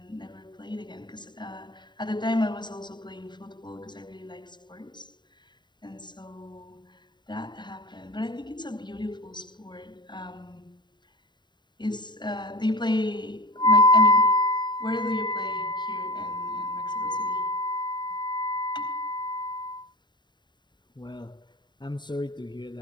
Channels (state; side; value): late; right; 0.22 ms